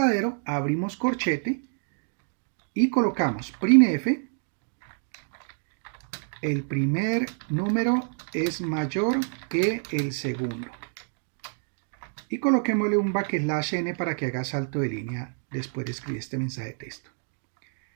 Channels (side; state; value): left; silent; 58 dB below the other